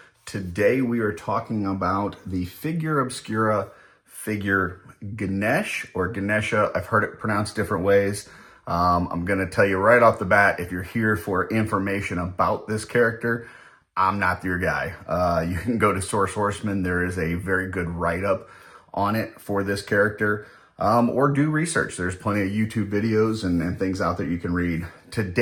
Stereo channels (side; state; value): both; identical; correlation 1.00